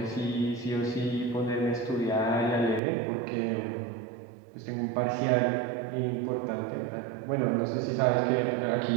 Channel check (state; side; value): drops out; left; at 2.8 s